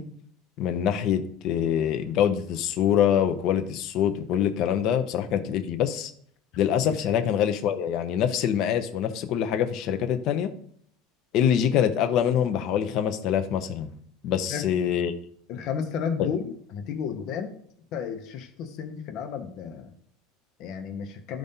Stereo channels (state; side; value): quieter; right; 8.8 dB